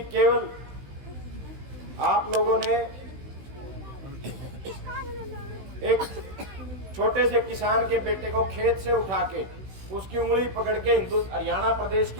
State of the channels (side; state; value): left; late; 16 ms